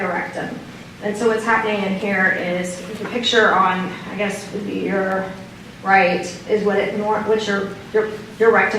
And so what's happening in here is the picture on, I guess, would be your right, is what your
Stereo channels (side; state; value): both; identical; correlation 1.00